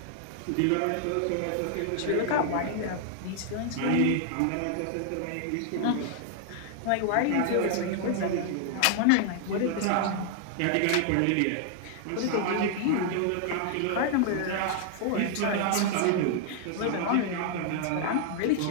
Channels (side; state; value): both; different; correlation 0.00